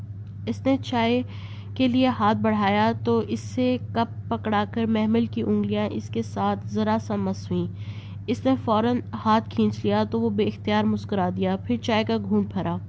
اس نے چائے کے لیے ہاتھ بڑھایا تو اس سے کپ پکڑا کر محمل کی انگلیاں اس کے ساتھ ذرا سا مس ہوئیں۔ اس نے فوراً ہاتھ کھینچ لیا تو وہ بے اختیار مسکرا دیا، پھر چائے کا گھونٹ بھرا۔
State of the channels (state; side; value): identical; both; correlation 1.00